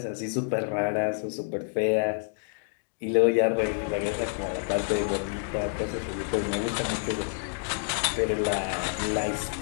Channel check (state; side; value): silent; right; 59 dB below the other